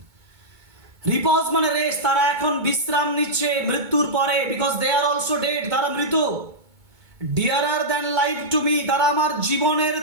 রিপোজ মানে রেস্ট, তারা এখন বিশ্রাম নিচ্ছে মৃত্যুর পরে, because they are also dead, তারা মৃত। Dearer than life to me, তারা আমার জীবনের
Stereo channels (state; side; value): late; left; 2.2 ms